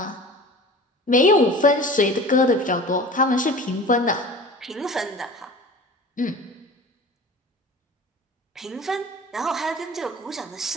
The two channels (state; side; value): normal; both; correlation 0.39